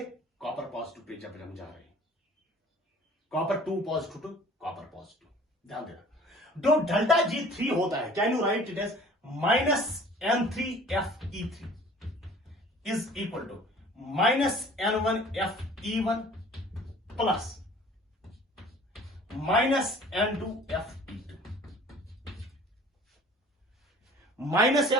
कॉपर पॉजिटिव पे जब हम जा रहे हैं, copper 2 positive to copper positive, ध्यान देना। जो डेल्टा G3 होता है, can you write it as -N3FE3 is equal to -N1FE1 plus -N2FE2, minus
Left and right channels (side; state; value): both; normal; correlation 0.49